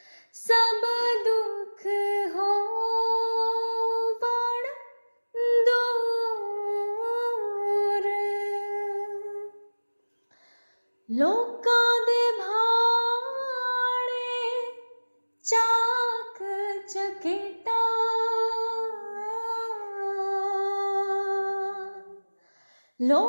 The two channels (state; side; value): inverted; both; correlation -1.00